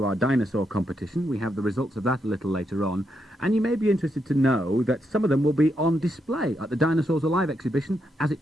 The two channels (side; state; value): both; normal; correlation 0.81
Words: our dinosaur competition. We have the results of that a little later on, and you may be interested to know that some of them will be on display at the Dinosaurs Alive exhibition as it